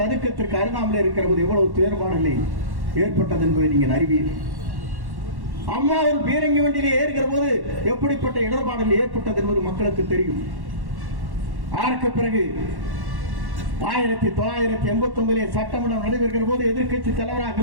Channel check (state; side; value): late; left; 1.1 ms